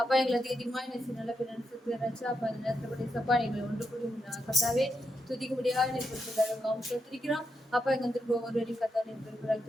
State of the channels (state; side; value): normal; both; correlation 0.84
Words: எங்களை அதிகமாக நல்ல பிறச்சு அப்பா அந்த நேரத்தில் கூட சப்பா எங்களை ஒன்று கூடி கத்தாவே துதிக்க முடியாது கொடுத்ததாக சோத்திரிக்கிறோம். அப்பா எங்க வந்து ஒவ்வொரு வழி கத்தாவே